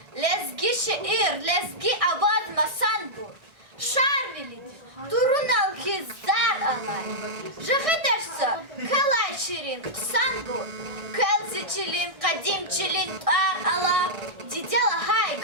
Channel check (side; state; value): left; late; 1.6 ms